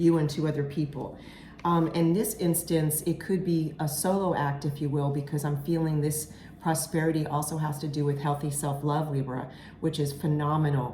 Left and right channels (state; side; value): identical; both; correlation 1.00